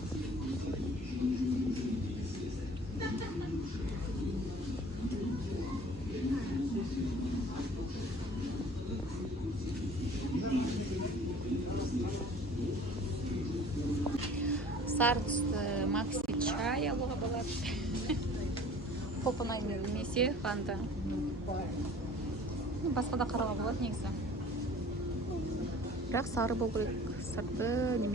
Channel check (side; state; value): both; normal; correlation 0.48